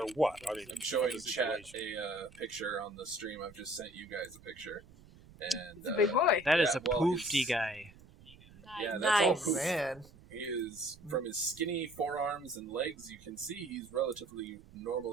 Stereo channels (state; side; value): noise; right; rumble, 22 dB below the sound